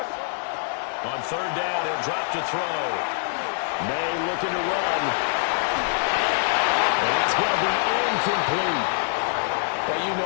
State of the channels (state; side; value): silent; right; digital silence